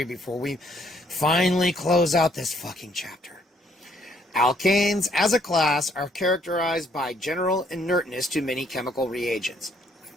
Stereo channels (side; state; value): both; normal; correlation 0.67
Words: before we finally close out this fucking chapter. Alkanes, as a class, are characterized by general inertness to many chemical reagents.